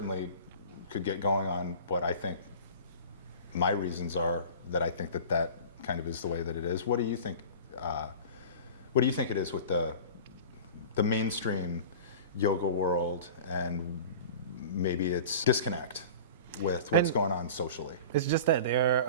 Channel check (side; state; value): both; inverted; correlation -0.37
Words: could get going on what I think my reasons are that I think that kind of is the way that it is. What do you think? What do you think it is with the mainstream yoga world, and maybe it's disconnect with what's going on socially? It's just that they're